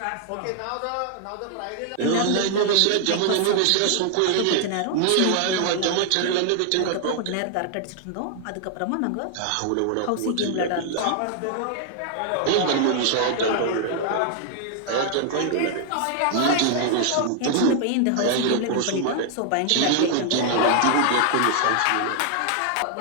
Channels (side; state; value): both; different; correlation 0.00